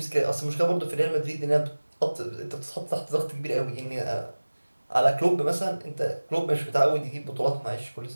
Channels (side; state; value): both; inverted; correlation -1.00